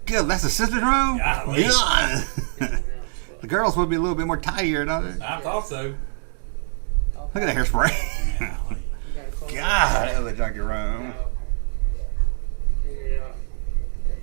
Good. That's the sister's room? Golly. God. The girls would be a little bit more tidier, don't they? I thought so. Look at that hairspray. Golly. God, that was a junky room. Figured out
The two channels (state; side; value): silent; left; digital silence